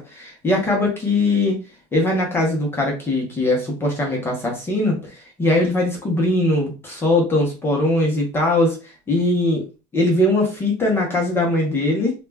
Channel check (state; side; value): normal; both; correlation 0.51